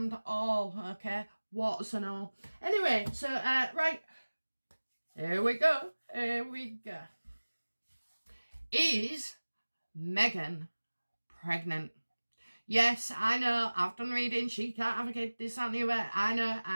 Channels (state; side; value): inverted; both; correlation -1.00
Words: all, okay? What's and all. Anyway, so, right. Here we go. Is Meghan pregnant? Yes, I know, I've done reading, she can't have a kid, this, that, and the other,